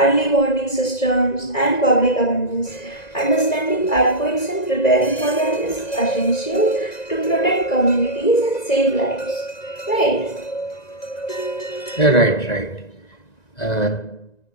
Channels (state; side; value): late; right; 1.9 ms